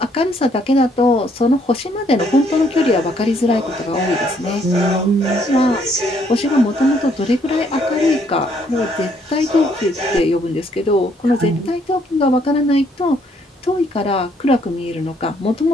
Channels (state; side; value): normal; both; correlation 0.68